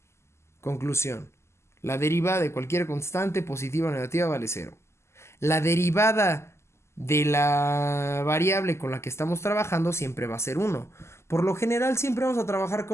Conclusión. La derivada de cualquier constante, positiva o negativa, vale 0. La derivada de la variable con la que estamos trabajando siempre va a ser 1. Por lo general siempre vamos a trabajar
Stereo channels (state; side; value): late; right; 0.13 ms